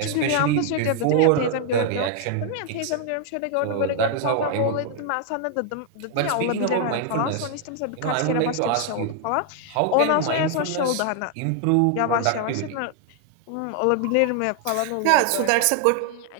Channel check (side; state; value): both; different; correlation 0.00